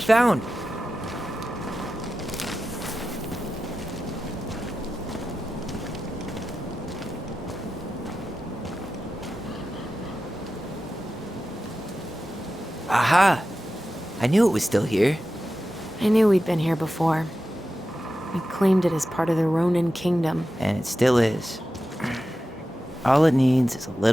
Aha! I knew it was still here. I knew we'd been here before. We claimed it as part of the Ronin kingdom. And it still is. All it needs is a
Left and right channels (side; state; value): both; normal; correlation 0.92